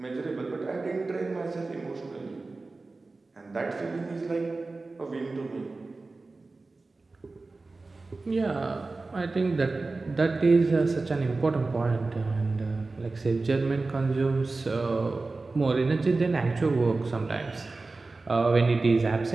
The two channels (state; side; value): quieter; left; 3.6 dB